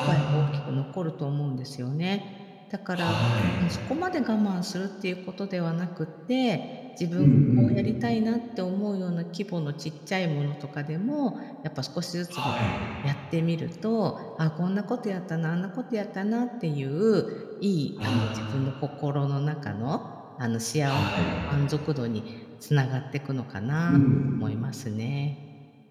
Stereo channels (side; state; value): both; identical; correlation 1.00